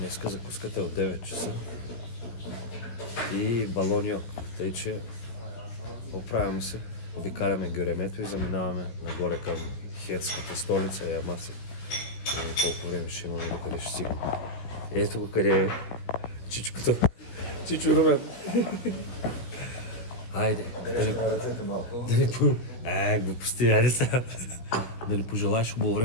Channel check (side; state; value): right; late; 16 ms